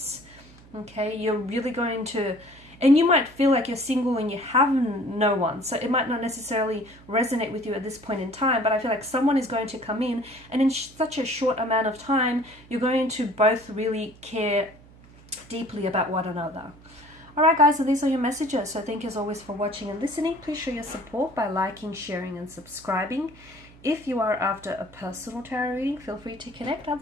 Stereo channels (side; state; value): right; noise; hum, 23 dB below the sound